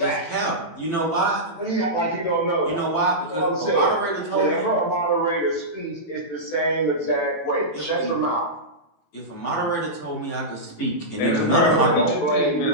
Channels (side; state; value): right; late; 18 ms